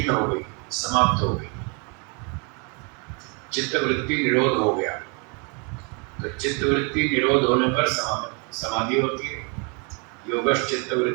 हो गई, समाप्त हो गई, चित्त वृत्ति निरोध हो गया, तो चित्तवृत्ति निरोध होने पर समाधि होती है। योगश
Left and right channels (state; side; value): quieter; left; 33.8 dB